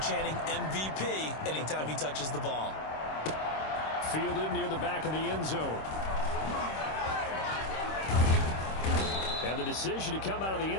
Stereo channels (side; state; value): right; late; 26 ms